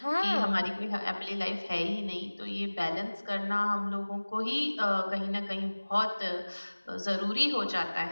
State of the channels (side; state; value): both; inverted; correlation -1.00